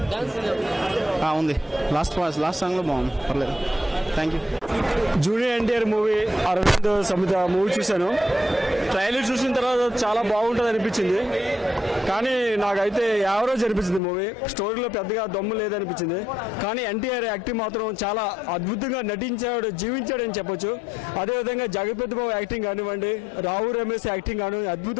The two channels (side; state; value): right; drops out; at 14.0 s